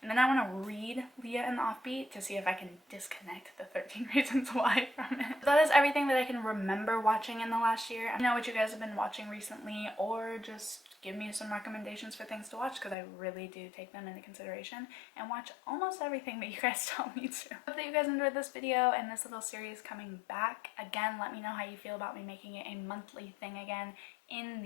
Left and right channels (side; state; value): right; drops out; at 13.0 s